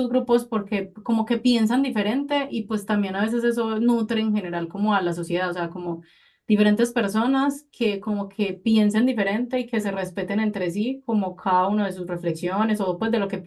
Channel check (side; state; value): both; identical; correlation 1.00